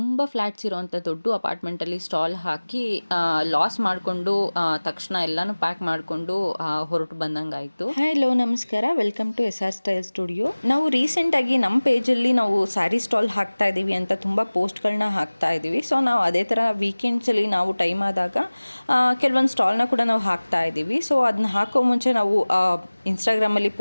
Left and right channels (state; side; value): inverted; both; correlation -1.00